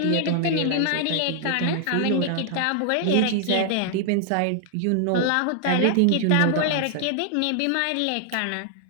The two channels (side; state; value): both; different; correlation 0.00